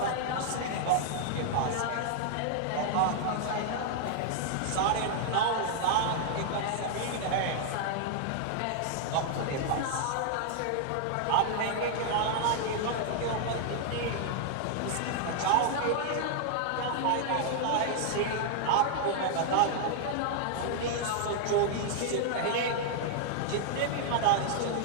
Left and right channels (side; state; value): both; different; correlation -0.01